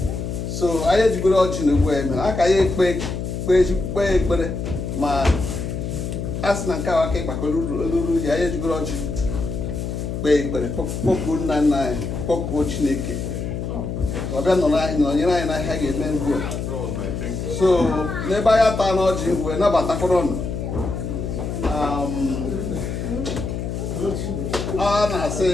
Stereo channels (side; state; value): left; noise; hum, 4 dB below the sound